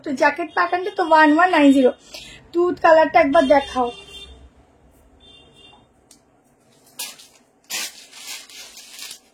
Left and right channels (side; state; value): both; identical; correlation 1.00